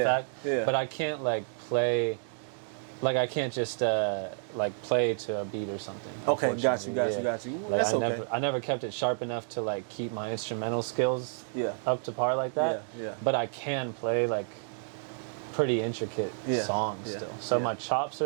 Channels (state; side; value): silent; left; digital silence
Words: fact. Yeah. But I can't like play. Like I can't just like play to a beat or something. Okay, got you. Like That's okay. I never kept it sharp enough to like keep my instrumental skills Yeah. up to par like that. Yeah. But I can play like pretty intricate songs still. So my chops